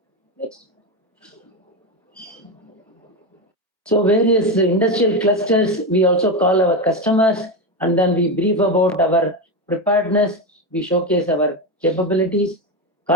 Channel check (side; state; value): both; normal; correlation 0.14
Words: Next. So various industrial clusters, we also call our customers, and then we brief about our preparedness. We showcase our capabilities.